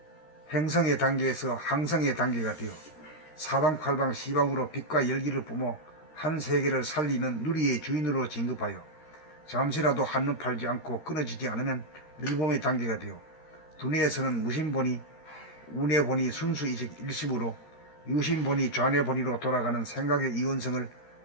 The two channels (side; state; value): right; late; 13 ms